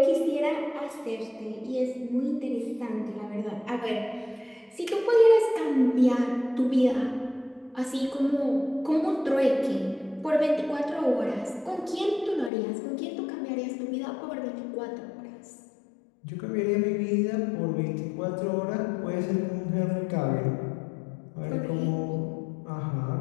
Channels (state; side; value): drops out; right; at 12.5 s